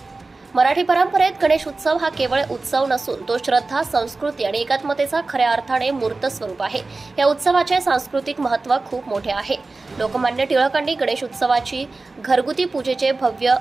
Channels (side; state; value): left; quieter; 3.5 dB